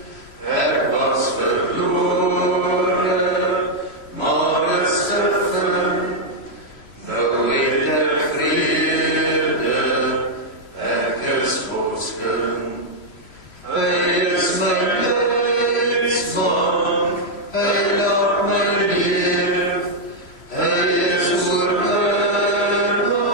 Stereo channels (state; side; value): late; right; 3.0 ms